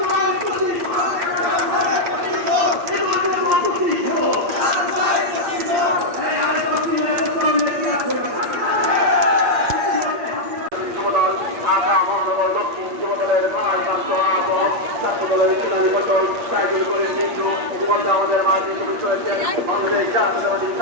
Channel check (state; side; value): late; left; 8.6 ms